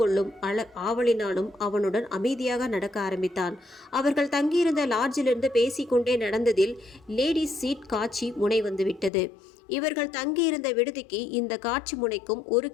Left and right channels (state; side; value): drops out; right; at 9.1 s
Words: ஆவலினாலும் அவனுடன் அமைதியாக நடக்க ஆரம்பித்தான். அவர்கள் தங்கியிருந்த லாட்ஜிலிருந்து பேசிக்கொண்டே நடந்ததில் லேடிஸ் சீட் காட்சி முனை வந்துவிட்டது. இவர்கள் தங்கியிருந்த விடுதிக்கு இந்த காட்சி முனைக்கும் 1